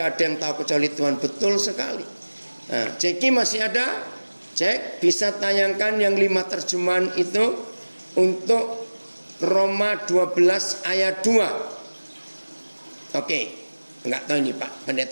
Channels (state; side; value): inverted; both; correlation -1.00